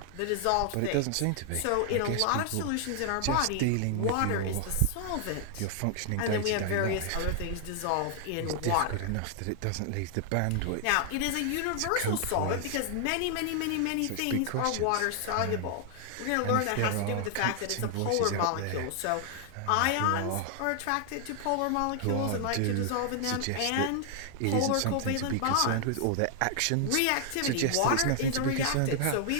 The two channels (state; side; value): different; both; correlation 0.00